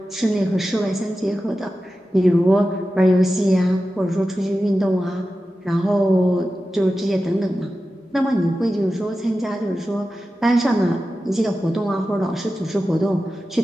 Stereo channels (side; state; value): both; normal; correlation 0.93